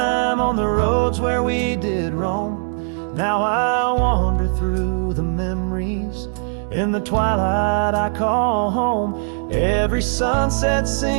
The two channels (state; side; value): silent; left; digital silence